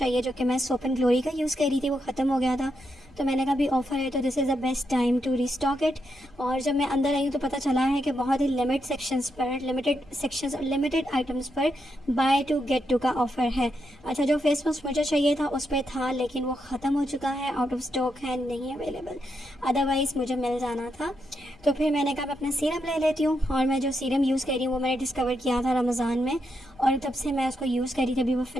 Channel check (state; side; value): noise; left; rumble, 26 dB below the sound